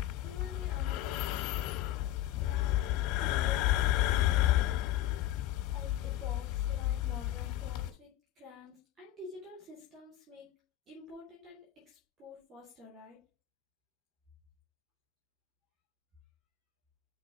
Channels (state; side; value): quieter; right; 13.4 dB